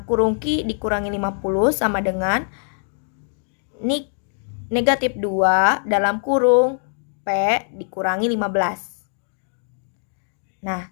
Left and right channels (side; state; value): right; silent; digital silence